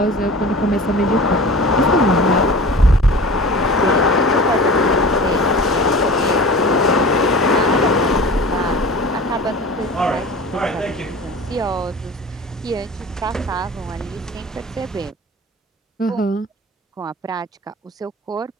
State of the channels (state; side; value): normal; both; correlation 0.38